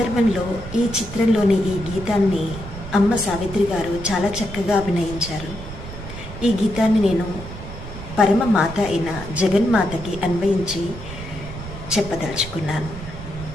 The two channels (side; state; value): right; noise; rumble, 11 dB below the sound